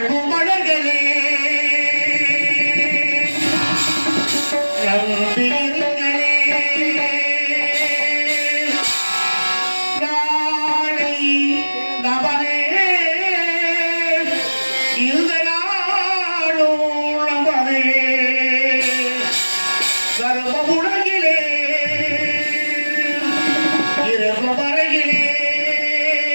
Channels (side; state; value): both; inverted; correlation -1.00